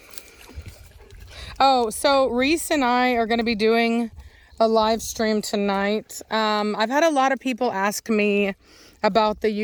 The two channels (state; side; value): identical; both; correlation 1.00